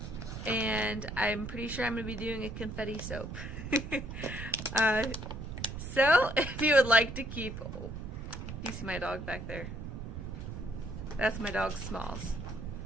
and I'm pretty sure I'm going to be doing a confetti soap. So, if you would like to keep, you see my dog back there? That's my dog Smalls.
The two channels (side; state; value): right; noise; rumble, 7 dB below the sound